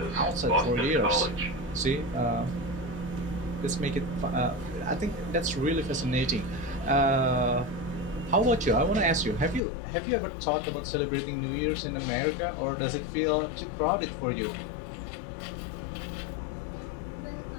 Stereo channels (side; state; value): right; drops out; at 9.6 s